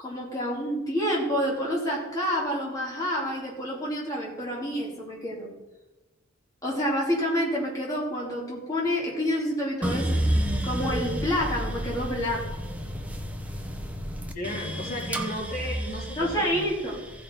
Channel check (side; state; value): both; normal; correlation 0.51